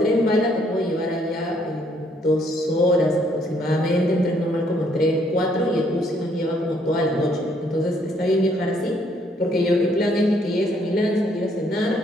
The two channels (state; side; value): normal; both; correlation 0.68